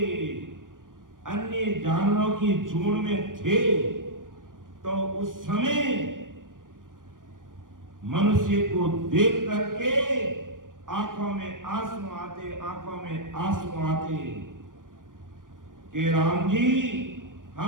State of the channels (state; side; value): late; left; 0.89 ms